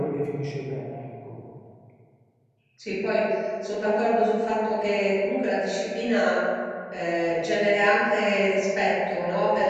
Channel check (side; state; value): both; identical; correlation 1.00